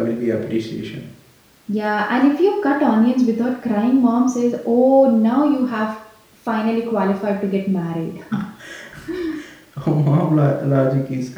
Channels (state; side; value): identical; both; correlation 1.00